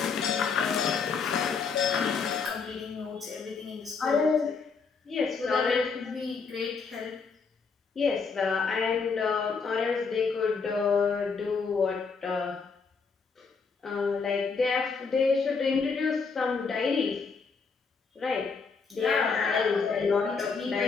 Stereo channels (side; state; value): right; quieter; 5.1 dB